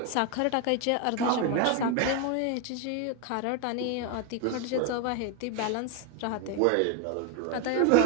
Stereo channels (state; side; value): different; both; correlation 0.01